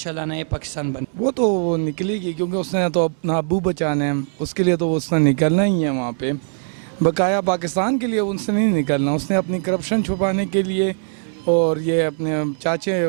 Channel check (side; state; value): left; silent; digital silence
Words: नए पाकिस्तान बन। वो तो निकलेगी, क्योंकि उसने तो अपना अबू बचाना है, उसके लिए तो उसने निकलना ही है वहाँ पे। बकाया पाकिस्तान के लिए उसने नहीं निकलना, उसने अपनी करप्शन छुपाने के लिए और ये अपने चाचे